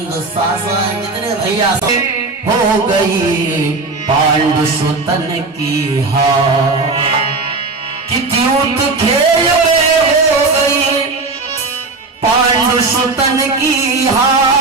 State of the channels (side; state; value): left; quieter; 3.7 dB